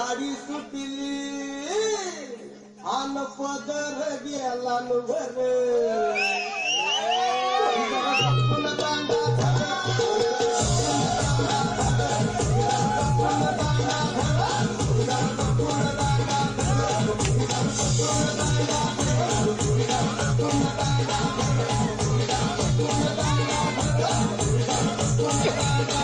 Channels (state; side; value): identical; both; correlation 1.00